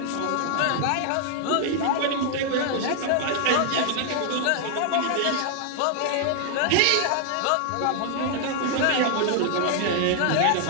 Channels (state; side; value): different; both; correlation 0.00